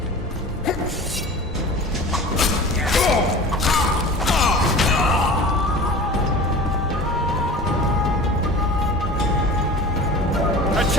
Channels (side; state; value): both; normal; correlation 0.37